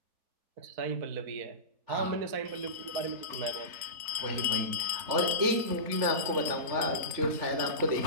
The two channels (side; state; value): left; late; 3.3 ms